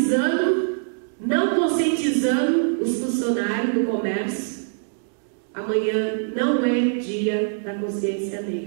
não conscientizando os funcionários do comércio. Amanhã não é Dia da Consciência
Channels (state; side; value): silent; left; digital silence